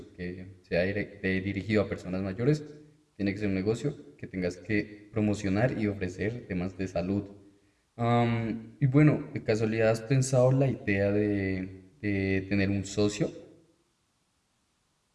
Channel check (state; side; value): identical; both; correlation 1.00